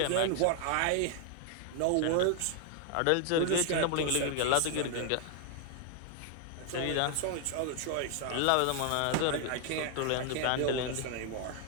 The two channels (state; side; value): different; both; correlation 0.00